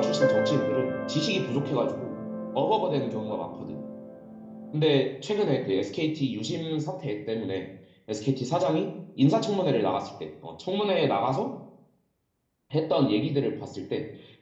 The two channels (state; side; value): identical; both; correlation 1.00